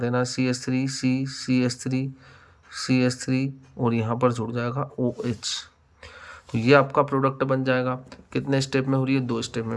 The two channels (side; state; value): both; identical; correlation 1.00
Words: CH3 और यहाँ पर जुड़ जाएगा OH। तो ये आपका प्रोडक्ट बन जाएगा। कितने स्टेप में हो रही है, 2 स्टेप में।